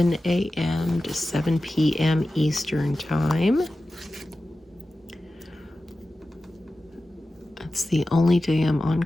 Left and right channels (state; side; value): normal; both; correlation 0.94